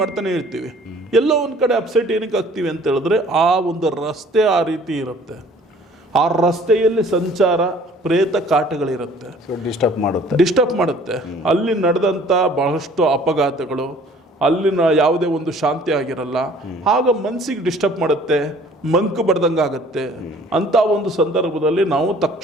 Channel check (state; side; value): normal; both; correlation 0.53